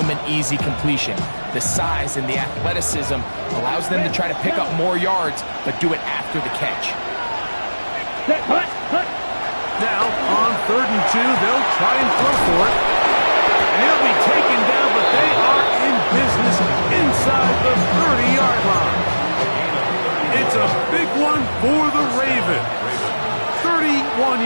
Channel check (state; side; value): inverted; both; correlation -1.00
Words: an easy completion. The size and the athleticism allows them to try to pick up more yards, but do it after the catch. Now, on 3rd and 2, they'll try and throw for it. And he'll be taken down, but they are in business inside the 30-yard line. It's a big one for the Ravens. 31